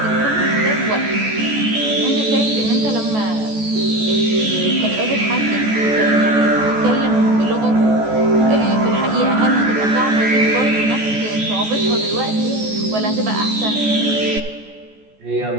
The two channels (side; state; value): left; late; 14 ms